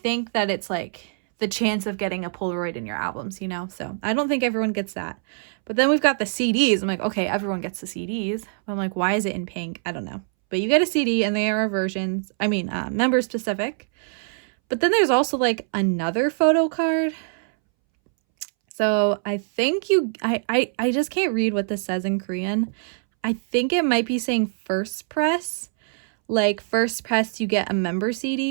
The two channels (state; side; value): silent; left; 63 dB below the other